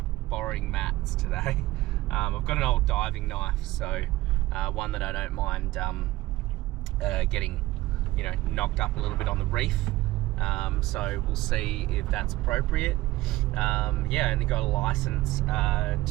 borrowing Matt's today. I've got an old diving knife, so one that I don't mind getting, knocked up a little bit on the reef. So we'll see if that's appropriate. I only got a license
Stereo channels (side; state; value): left; quieter; 17.7 dB